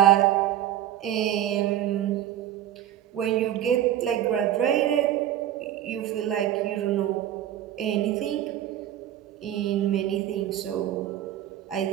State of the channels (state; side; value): quieter; left; 11.7 dB